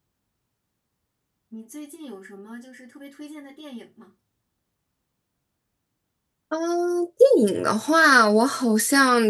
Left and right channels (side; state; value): both; identical; correlation 1.00